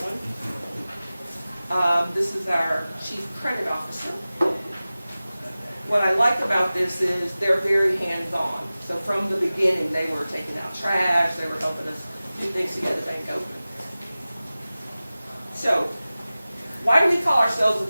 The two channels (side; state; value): both; inverted; correlation -0.97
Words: one. This is our Chief Credit Officer. What I like about this is they're very hands-on. So from the beginning, they were taking out trash, they were helping us do things to get the bank open. So, why do we call ourselves a